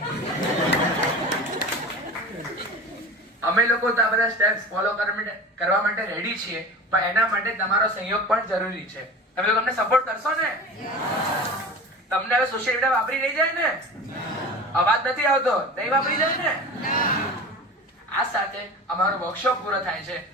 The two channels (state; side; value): normal; both; correlation 0.34